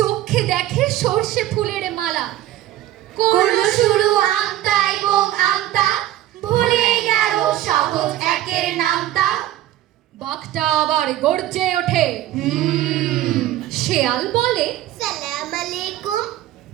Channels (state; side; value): quieter; left; 13.8 dB